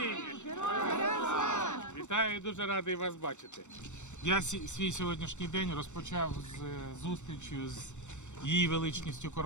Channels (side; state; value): right; late; 0.84 ms